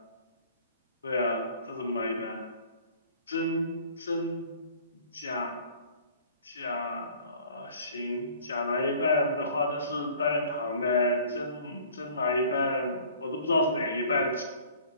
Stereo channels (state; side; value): inverted; both; correlation -0.51